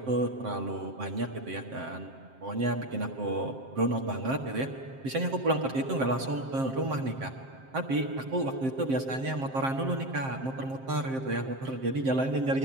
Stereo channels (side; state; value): left; late; 7.6 ms